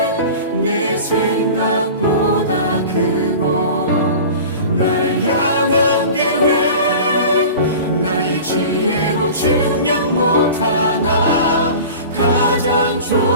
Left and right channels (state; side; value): inverted; both; correlation -0.37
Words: 내 생각보다 크고 날 향한 계획 나의 지혜로 증량 못하나 가장